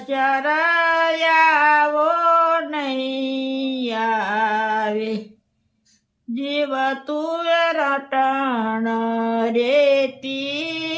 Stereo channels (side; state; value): both; identical; correlation 1.00